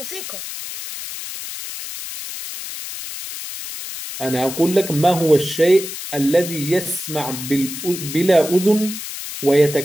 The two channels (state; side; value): noise; left; hiss, 9 dB below the sound